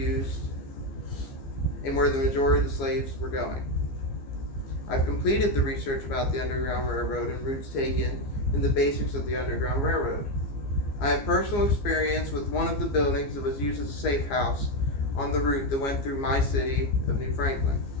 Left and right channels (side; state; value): right; late; 15 ms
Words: and where the majority of the slaves were going. I've completed the research about the Underground Railroad and routes taken and the basics of the Underground Railroad. I have personal experience with one of the buildings that was used as a safe house on the route that went through my city of New Franklin.